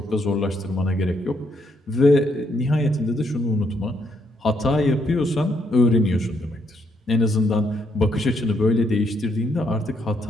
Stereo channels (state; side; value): normal; both; correlation 0.74